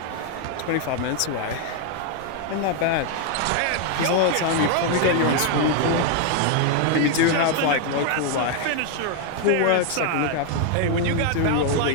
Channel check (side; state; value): both; different; correlation 0.00